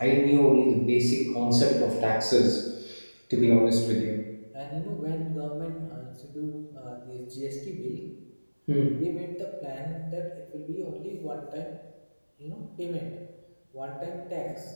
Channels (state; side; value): inverted; both; correlation -1.00